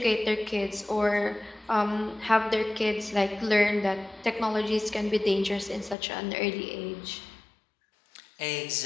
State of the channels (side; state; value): right; drops out; at 6.0 s